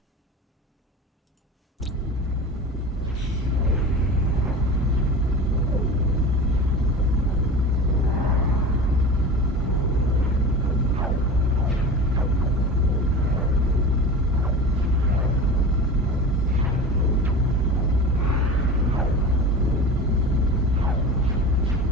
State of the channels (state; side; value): normal; both; correlation 0.33